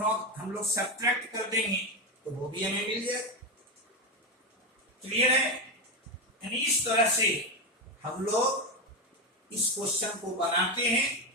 हम लोग सब्ट्रैक्ट कर देंगे तो वो भी हमें मिल जाए। क्लियर है? यानी इस तरह से हम लोग इस क्वेश्चन को बनाते हैं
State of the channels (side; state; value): both; normal; correlation 0.12